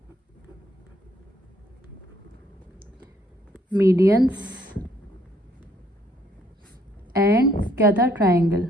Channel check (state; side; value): normal; both; correlation 0.67